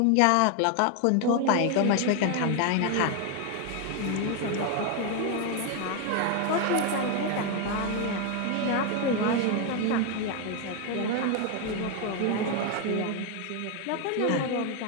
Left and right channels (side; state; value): both; different; correlation 0.01